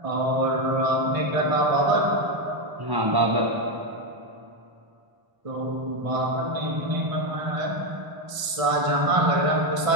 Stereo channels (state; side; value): late; left; 1.0 ms